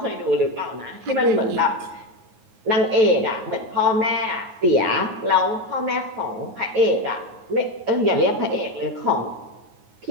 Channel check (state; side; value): late; left; 9.4 ms